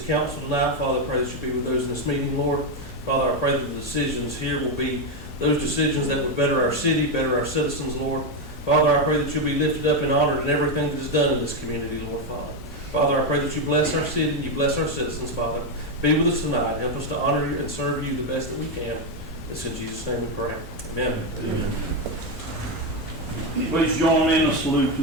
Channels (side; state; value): both; normal; correlation 0.07